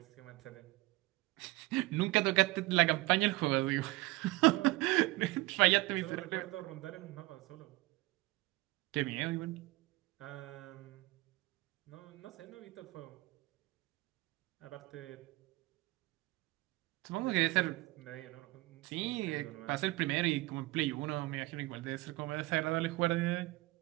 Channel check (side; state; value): left; quieter; 20.8 dB